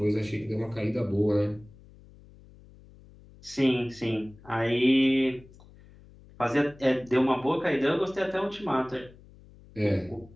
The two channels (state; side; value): noise; left; hum, 23 dB below the sound